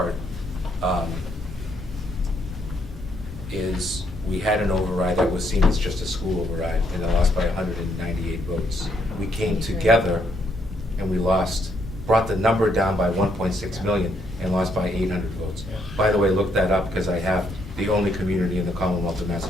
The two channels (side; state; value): both; normal; correlation 0.73